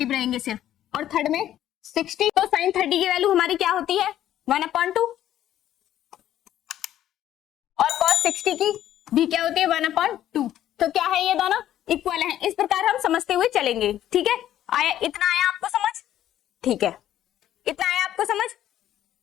रहेंगे सिर्फ, और थर्ड में 60. तो साइन 30 की वैल्यू हमारी क्या होती है? 1/2 और कॉस 60 की भी क्या होती है? 1/2. तो क्या है? ये दोनों इक्वल हैं. इस प्रकार हम समझते हुए चलेंगे. ठीक है, आया? इतना आया आपको समझ? ठीक है, इतना आया आपको समझ?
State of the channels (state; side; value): quieter; right; 12.0 dB